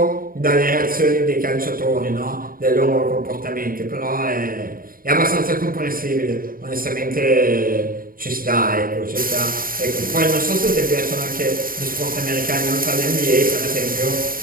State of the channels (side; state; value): left; late; 0.41 ms